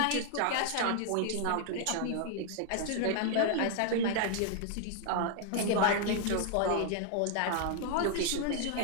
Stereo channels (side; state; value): both; different; correlation 0.00